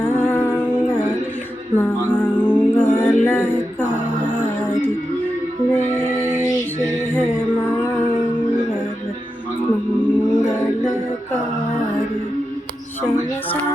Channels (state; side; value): normal; both; correlation 0.89